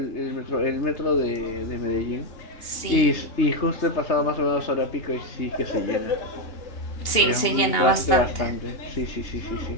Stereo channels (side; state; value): right; late; 2.8 ms